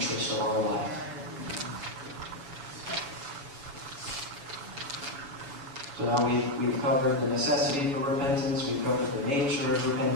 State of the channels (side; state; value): left; late; 7.1 ms